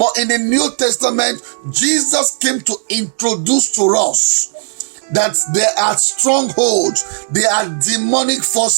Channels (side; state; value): left; silent; digital silence